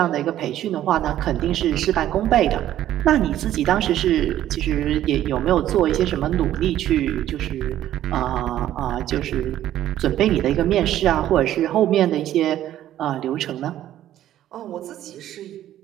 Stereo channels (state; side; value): quieter; left; 12.4 dB